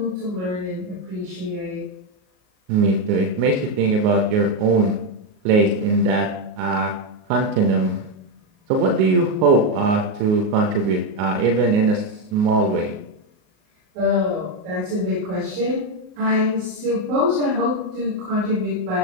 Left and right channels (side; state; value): left; late; 38 ms